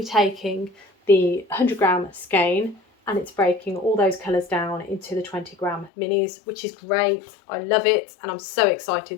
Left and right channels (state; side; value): drops out; right; at 5.9 s